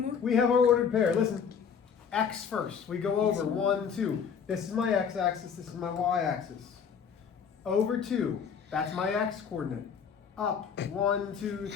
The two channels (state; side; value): quieter; right; 6.9 dB